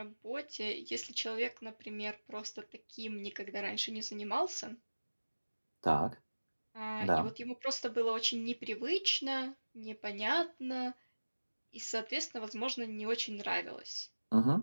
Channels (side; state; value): both; inverted; correlation -1.00